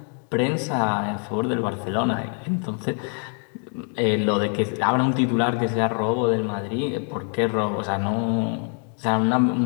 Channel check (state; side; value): quieter; right; 38.5 dB